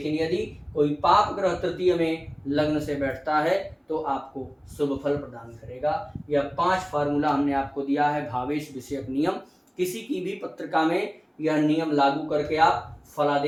यदि कोई पाप ग्रह तृतीय में लग्न से बैठता है तो आपको शुभ फल प्रदान करेगा। यह 5 फार्मूला हमने आपको दिया है भावेश विषयक नियम। किसी की भी पत्रिका में यह नियम लागू करके आप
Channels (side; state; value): both; identical; correlation 1.00